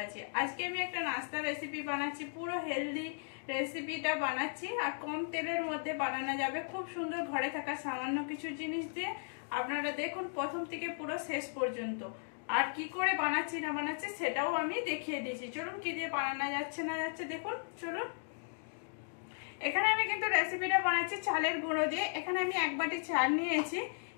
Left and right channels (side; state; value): right; silent; digital silence